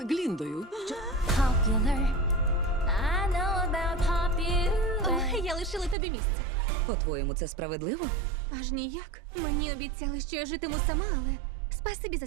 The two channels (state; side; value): drops out; left; at 6.0 s